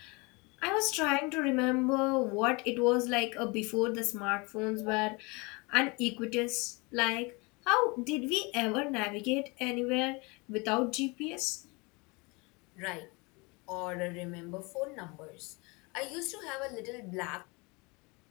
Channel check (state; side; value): quieter; right; 27.6 dB